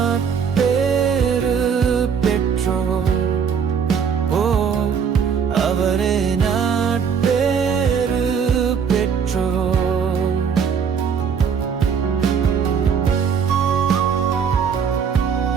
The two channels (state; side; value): quieter; left; 6.8 dB